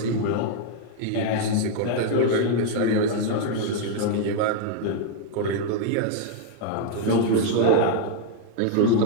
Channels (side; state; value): both; different; correlation 0.00